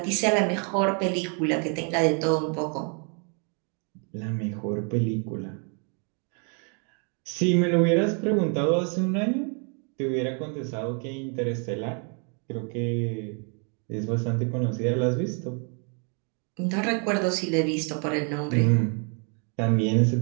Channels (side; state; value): left; quieter; 39.2 dB